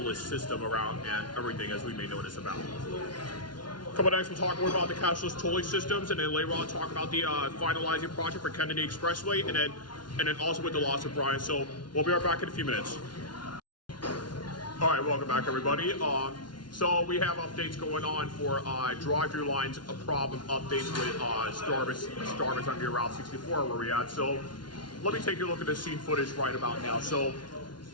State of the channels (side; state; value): right; late; 0.70 ms